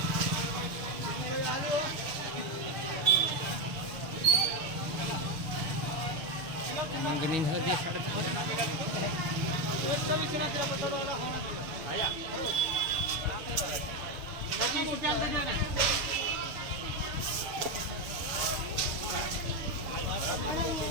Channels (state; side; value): late; left; 6.7 ms